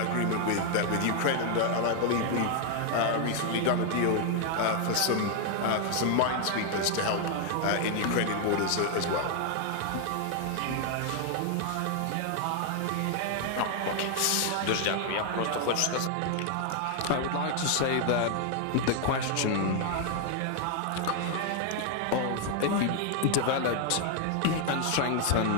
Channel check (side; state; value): both; different; correlation 0.00